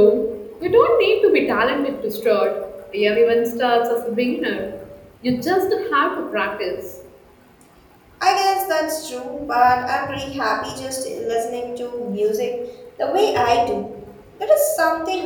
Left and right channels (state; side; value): identical; both; correlation 1.00